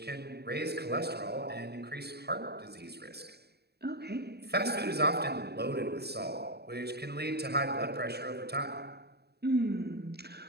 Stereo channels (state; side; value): late; left; 0.47 ms